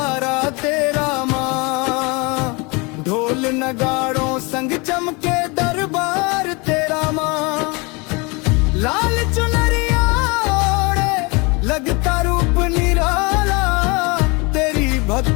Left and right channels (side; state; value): right; quieter; 28.0 dB